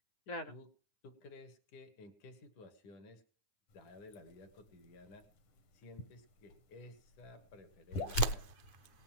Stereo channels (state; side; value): late; right; 9.7 ms